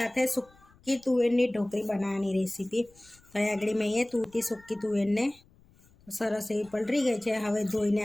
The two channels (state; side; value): noise; left; rumble, 29 dB below the sound